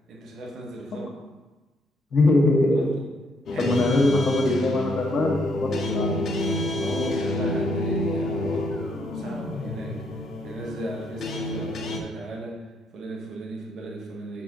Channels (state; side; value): normal; both; correlation 0.74